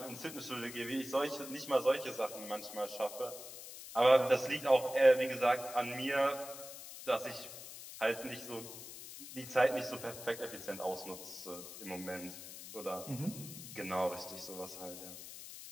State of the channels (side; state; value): left; noise; hiss, 12 dB below the sound